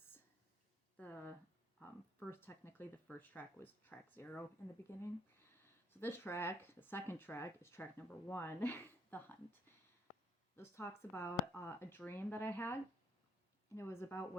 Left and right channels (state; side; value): normal; both; correlation 0.67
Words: the technically the first track was track 0 in the beginning. So this track, the second track, is track number 1, The Hunt. This talks about a dream that I had, and it was about